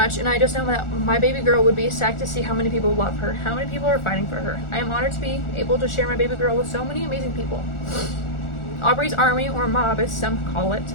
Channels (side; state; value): right; late; 1.4 ms